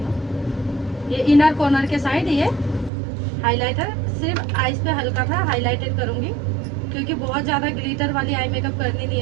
ये इनर कॉर्नर के साइड ये हाइलाइटर सिर्फ आईज पे हल्का सा हाइलाइटेड करूंगी, क्योंकि बहुत ज्यादा ग्लिटर वाली आई मेकअप करनी नहीं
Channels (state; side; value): drops out; left; at 2.9 s